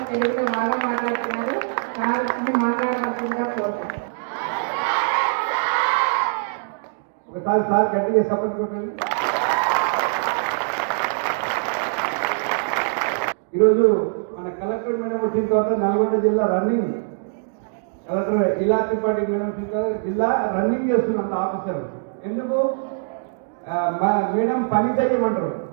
తెలుగులో బాగా మాట్లాడుతున్నారు. సార్ మాట్లాడవలసిందిగా కోరుతున్నాను. ఒకసారి సార్ గట్టిగా సపోర్ట్ కొట్టండి. ఈరోజు మన కలెక్టర్ మేడం వచ్చిన తర్వాత నల్గొండ జిల్లా రన్నింగ్, కలెక్టర్ ఇలా త్రిపాఠి మేడం వచ్చిన తర్వాత జిల్లా రన్నింగ్ చేస్తున్నంత ఆఫీసర్. ఎందుకు మేడం పని చేయమంటారు.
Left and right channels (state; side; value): silent; left; digital silence